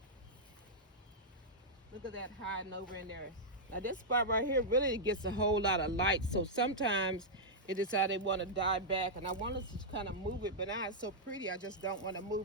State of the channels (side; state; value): both; normal; correlation -0.08